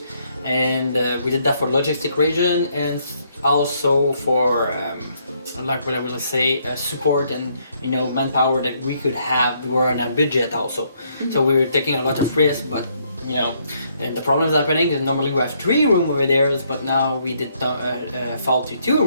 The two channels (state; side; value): inverted; both; correlation -0.71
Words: and we did that for logistic reason and also for like what I will say, support and manpower that we could have. We were on a budget also, so we were taking a lot of risk, but and the problem is happening is normally we have 3 rooms over there, but now we did fall to 2